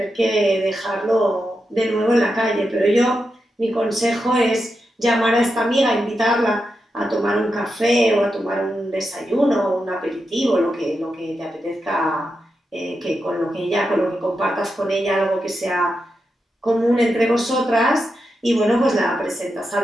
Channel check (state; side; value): normal; both; correlation 0.87